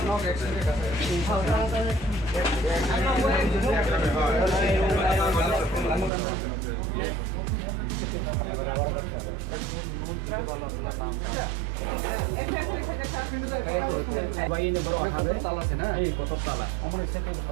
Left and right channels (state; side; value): drops out; left; at 6.1 s